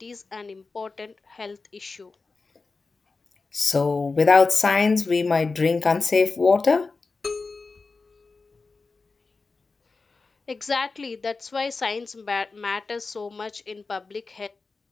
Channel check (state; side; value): quieter; right; 4.0 dB